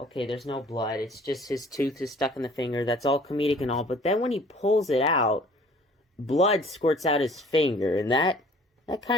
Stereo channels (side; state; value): both; normal; correlation 0.53